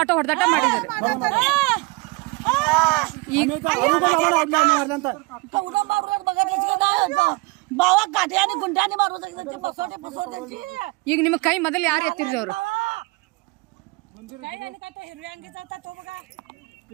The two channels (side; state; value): left; quieter; 26.0 dB